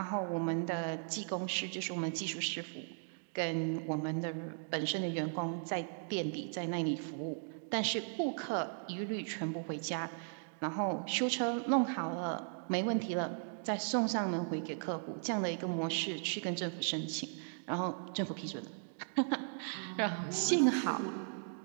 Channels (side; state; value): left; silent; digital silence